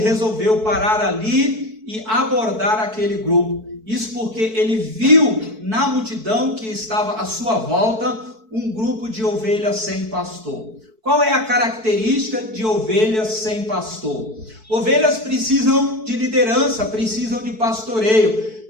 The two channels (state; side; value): late; left; 4.6 ms